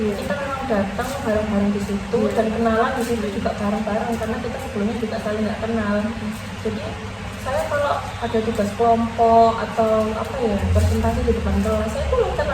memang datang bareng-bareng di situ dan kenalan di situ juga bareng-bareng karena kita sebelumnya juga saling nggak kenal. Jadi saya kalau ada tugas kelompok atau apa ya presentasi di depan kelas, saya tuh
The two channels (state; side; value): identical; both; correlation 1.00